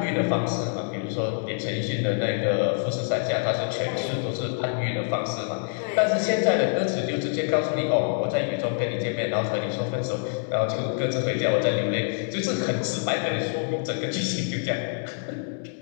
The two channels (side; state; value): right; silent; 61 dB below the other